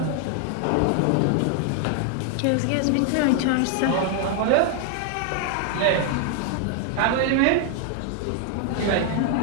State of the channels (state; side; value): different; both; correlation 0.00